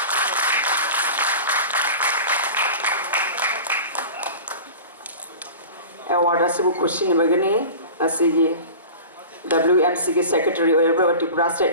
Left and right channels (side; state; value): both; inverted; correlation -0.36